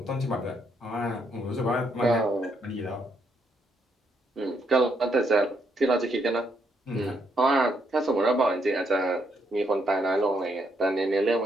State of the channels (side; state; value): both; normal; correlation 0.75